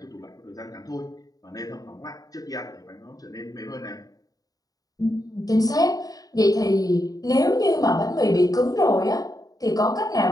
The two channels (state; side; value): late; right; 0.18 ms